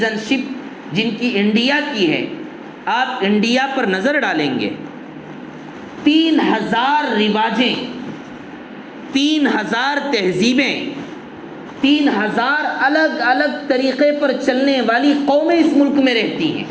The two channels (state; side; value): identical; both; correlation 1.00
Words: شپ جن کی انڈیا کی ہے، آپ انڈیا پر نظر ڈالیں گے 3000 رواجیں، 3000 تہذیبیں، 3000 الگ الگ طریقے پر چلنے والی قومیں اس ملک میں رہتی ہیں۔